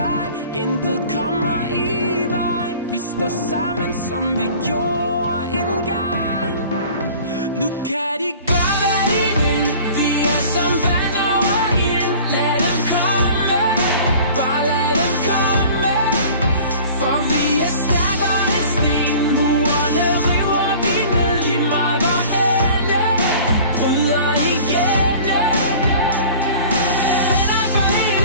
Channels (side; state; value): both; inverted; correlation -0.45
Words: intet kommer i vejen. Vi står sammen, som vi gjorde engang. Nu kan de gøre, hvad de vil. Vi er som vand over ild. Lad dem komme, bare lad dem komme. For vi er stærkere end sten. Murene river vi ned. Lige meget hvorhenne, bryder igennem. Venner for